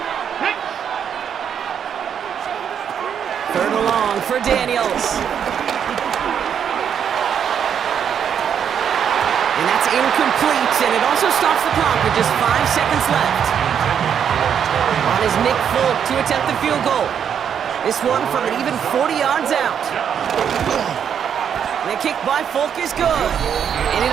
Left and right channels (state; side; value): quieter; left; 8.2 dB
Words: Third and long for Daniels. And that's incomplete, and it also stops the clock with just 5 seconds left. On is Nick Folk to attempt the field goal. This one from an even 40 yards out. The kick by Folk is good. And